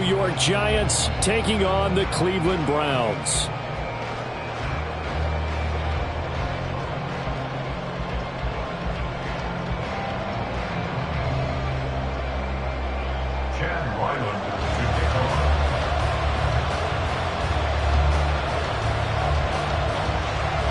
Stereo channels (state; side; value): identical; both; correlation 1.00